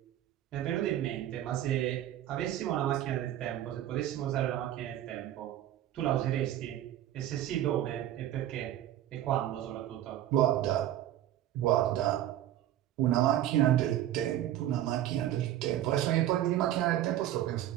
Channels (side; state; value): left; quieter; 12.5 dB